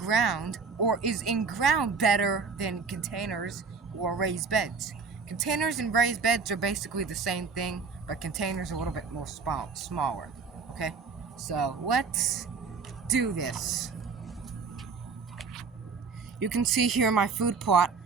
or is in ground better than containers or raised beds? Containers and raised beds are basically the same thing, but containers are a little bit more smaller. Okay, so let's do this. You can see here in my food plot,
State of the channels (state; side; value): quieter; left; 5.0 dB